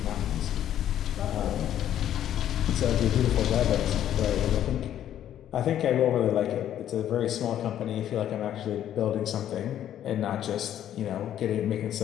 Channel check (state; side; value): quieter; right; 11.0 dB